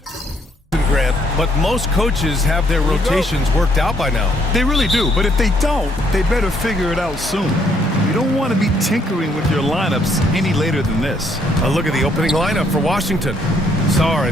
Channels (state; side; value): normal; both; correlation 0.69